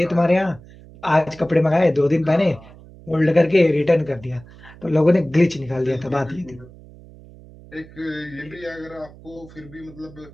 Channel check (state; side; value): noise; right; hum, 21 dB below the sound